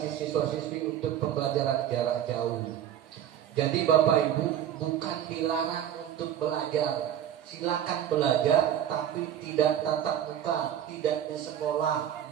siswa-siswi untuk pembelajaran jarak jauh. Jadi Bapak Ibu bukan dilarang untuk belajar, silakan belajar tapi tidak tatap muka, tidak di sekolah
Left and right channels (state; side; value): quieter; left; 10.5 dB